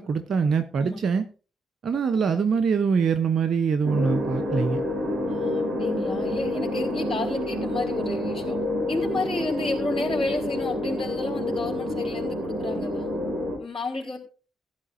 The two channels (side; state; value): both; normal; correlation 0.77